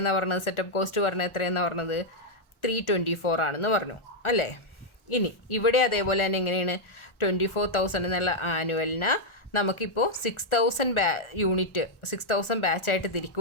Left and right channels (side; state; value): right; late; 1.4 ms